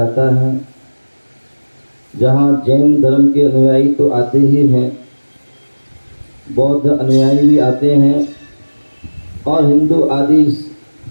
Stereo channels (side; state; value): both; inverted; correlation -1.00